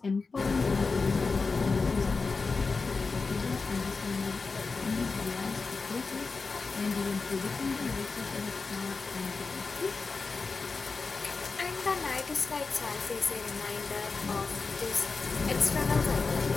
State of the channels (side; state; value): right; quieter; 4.3 dB